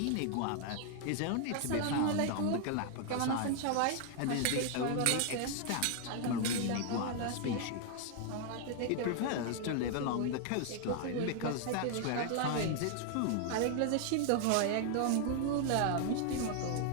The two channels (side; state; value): both; different; correlation 0.00